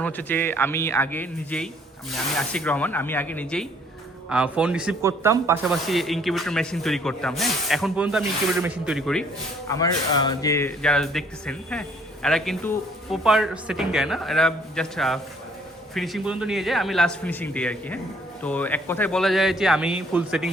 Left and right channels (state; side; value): normal; both; correlation 0.62